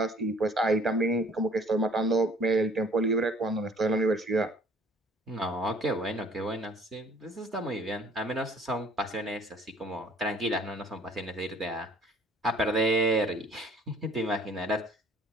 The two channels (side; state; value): both; normal; correlation 0.55